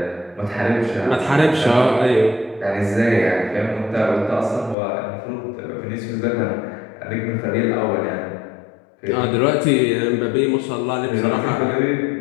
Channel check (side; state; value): right; drops out; at 4.8 s